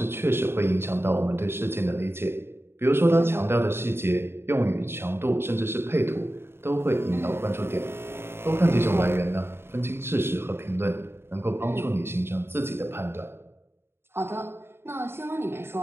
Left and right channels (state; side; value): late; left; 0.11 ms